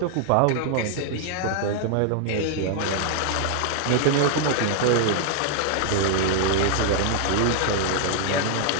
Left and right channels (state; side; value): different; both; correlation 0.00